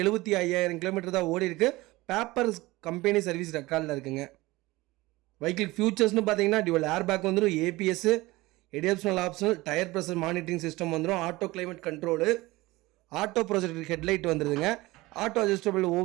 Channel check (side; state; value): left; quieter; 20.2 dB